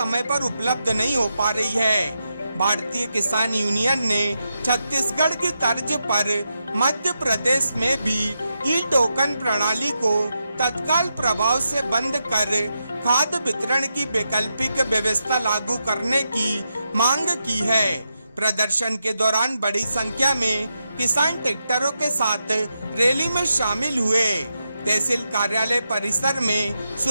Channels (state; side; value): inverted; both; correlation -0.86